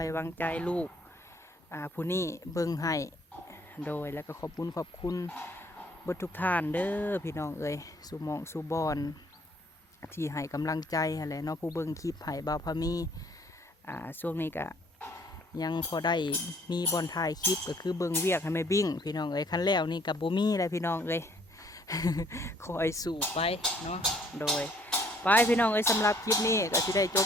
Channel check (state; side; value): normal; both; correlation 0.62